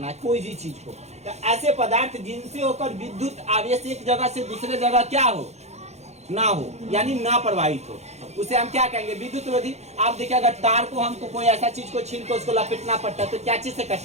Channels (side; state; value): left; late; 0.32 ms